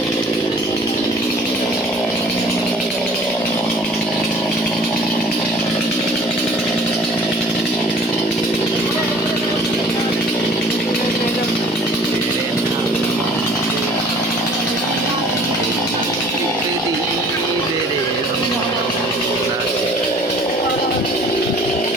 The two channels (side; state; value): both; normal; correlation 0.51